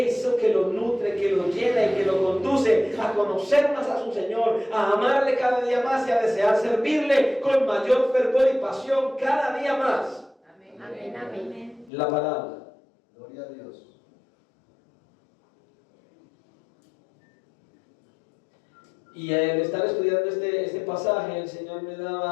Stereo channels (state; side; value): drops out; right; at 11.9 s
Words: que lo nutre, que lo llena y que lo conduce a conocer más a su Señor, a amarle cada día más y a desear servirle con mayor fervor y pasión cada día más. Amén, amén. La palabra. Gloria a Dios. Y al estar estudiando este pasaje, el Señor me